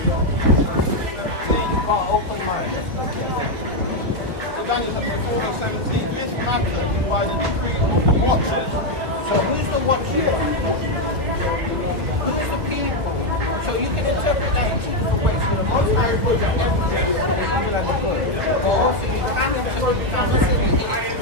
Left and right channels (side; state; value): left; late; 1.8 ms